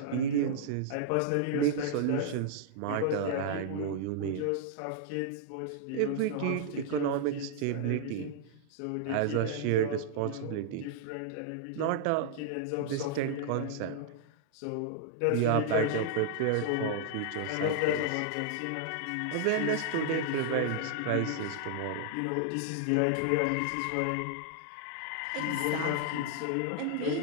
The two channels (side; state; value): both; different; correlation -0.01